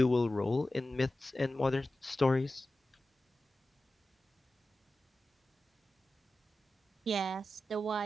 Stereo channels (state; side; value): normal; both; correlation 0.94